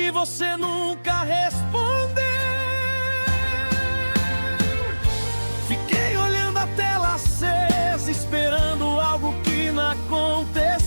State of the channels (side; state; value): both; inverted; correlation -1.00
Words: você nunca respondeu. Fiquei olhando a tela acesa, esperando algo que não